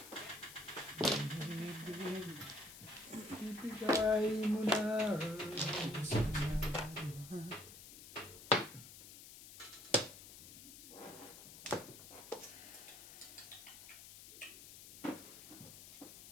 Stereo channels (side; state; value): left; noise; hiss, 15 dB below the sound